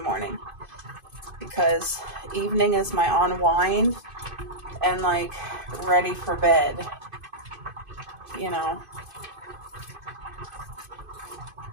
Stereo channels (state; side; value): late; left; 2.5 ms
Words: because evening is my unwind and like ready for bed, you know.